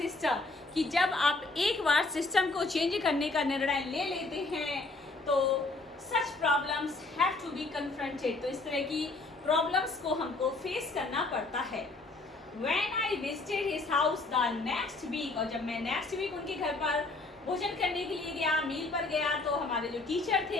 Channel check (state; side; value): quieter; right; 3.3 dB